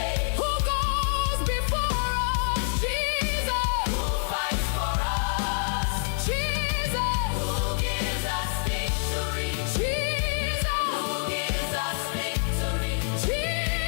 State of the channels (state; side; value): silent; right; 60 dB below the other